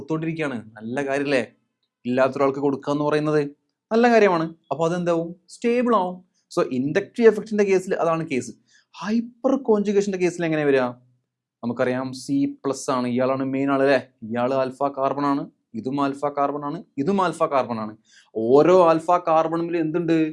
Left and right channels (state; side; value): identical; both; correlation 1.00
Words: നല്ല കാര്യമല്ലേ? ഇല്ലാത്തൊരാൾക്ക് കൊടുക്കുക എന്ന് പറയുന്നത് നല്ല കാര്യമാണ്. അപ്പോൾ അതെന്താവും? സ്റ്റേബിൾ ആവും. സോ ഇൻഡക്റ്റീവ് എഫക്റ്റിന്റെ കേസിൽ അതാണ് കേസ്. ഹൈപ്പർ കോൺജുഗേഷന്റെ കേസിൽ എങ്ങനെ വരിക? നമുക്കറിയാം C+ ആണ്, ഇയാളാണ് മെയിൻ ആള് അല്ലേ? ഇയാൾ ആൽഫ കാർബൺ ആണ്, ഇതും ആൽഫ കാർബൺ ആണ്, ഇതും ആൽഫ കാർബൺ ആണ്. ഓരോ ആൽഫ കാർബണിൽ എന്തുണ്ട്?